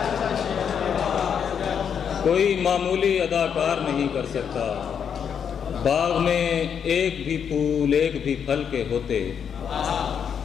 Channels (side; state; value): right; quieter; 7.6 dB